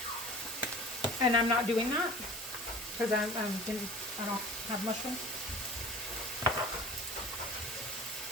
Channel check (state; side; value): noise; right; hiss, 10 dB below the sound